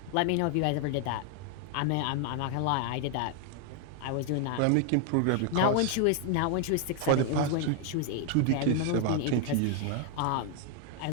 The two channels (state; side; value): different; both; correlation 0.00